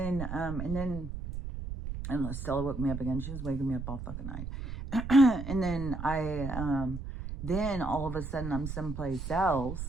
and Stella woke me up again. She was waking me up all fucking night. And then then all of a sudden I'm someplace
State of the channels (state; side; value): noise; right; rumble, 7 dB below the sound